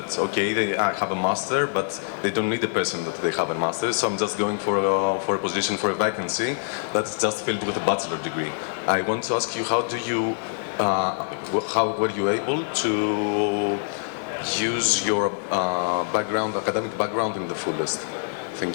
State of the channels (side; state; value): right; silent; digital silence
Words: okay, I have a master, but they don't need a person that they have a master, so I'm just going for a position, for a vacancy that's just filled with a bachelor degree. I want to ask you, how were you able to use your academic background in the fullest?